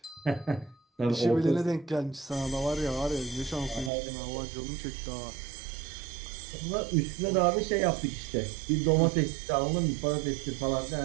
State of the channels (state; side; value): drops out; left; at 3.9 s